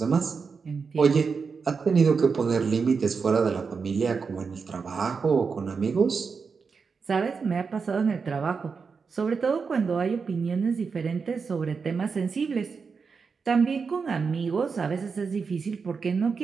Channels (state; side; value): quieter; left; 5.3 dB